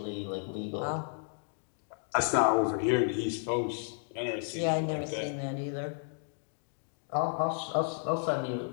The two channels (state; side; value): silent; right; digital silence